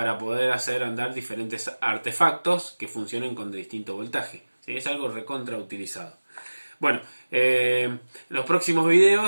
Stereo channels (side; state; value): both; inverted; correlation -1.00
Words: poder hacer andar diferentes artefactos que funcionen con distinto voltaje. ¿Sí? Es algo recontra utilizado. Bueno, en los próximos